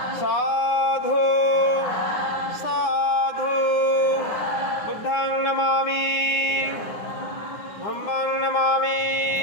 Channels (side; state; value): right; late; 9.7 ms